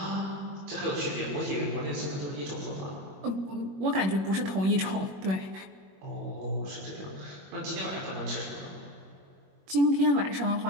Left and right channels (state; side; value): late; left; 21 ms